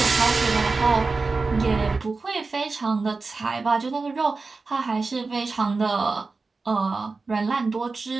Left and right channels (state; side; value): quieter; left; 4.0 dB